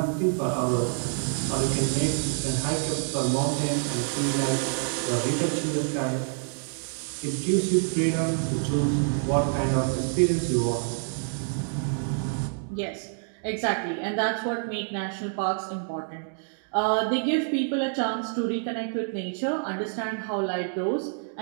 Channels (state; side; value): silent; left; 60 dB below the other